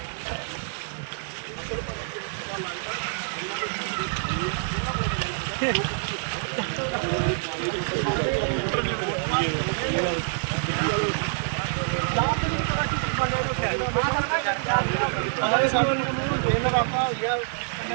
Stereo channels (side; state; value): left; silent; 61 dB below the other